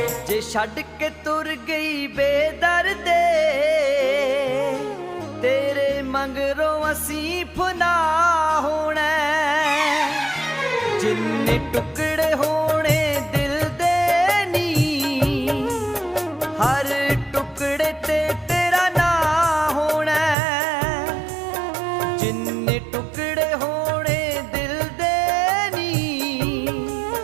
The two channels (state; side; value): drops out; left; at 20.4 s